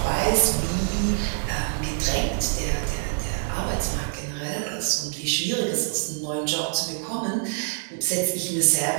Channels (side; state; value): left; silent; digital silence